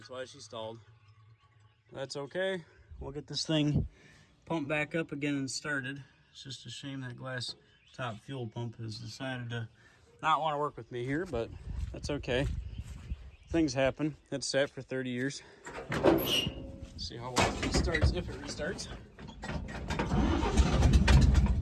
why she stalled. That's okay. We'll get this thing pumped back up again and started. It's just a shame that glass top fuel pump has decided to not want to work with me here, but that's okay. Things happen. It's sat for 30 years. See how well it restarts, if it restarts.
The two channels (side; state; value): both; identical; correlation 1.00